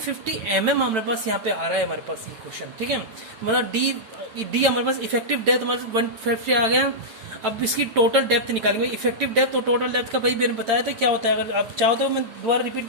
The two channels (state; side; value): late; left; 9.0 ms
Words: mm हमारे पास यहाँ पे आ रहा है हमारे पास ये क्वेश्चन, ठीक है। मतलब डी हमारे पास इफेक्टिव डेप्थ हमारे पास 150 आ गया। अब इसकी टोटल डेप्थ निकालेंगे। इफेक्टिव डेप्थ और टोटल डेप्थ का भाई मैंने बताया था क्या होता है। अगर आप चाहो तो मैं दोबारा रिपीट